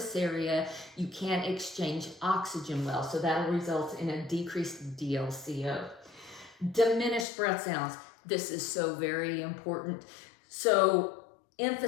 area, you can't exchange oxygen well, so that'll result in a decreased DLCO. Diminished breath sounds. This is so very important. So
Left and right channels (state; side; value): drops out; right; at 7.2 s